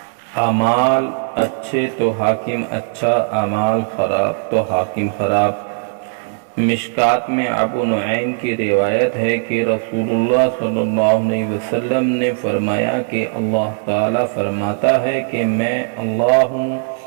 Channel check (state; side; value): silent; left; digital silence